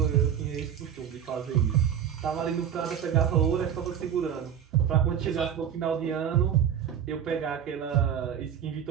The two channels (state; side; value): quieter; left; 8.9 dB